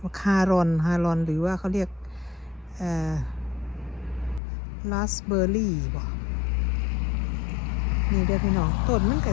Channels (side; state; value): right; drops out; at 4.4 s